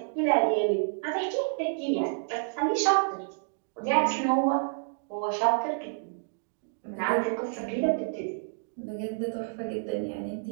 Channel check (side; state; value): left; silent; digital silence